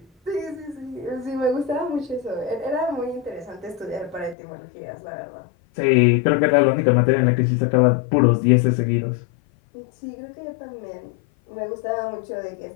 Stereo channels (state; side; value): drops out; right; at 4.4 s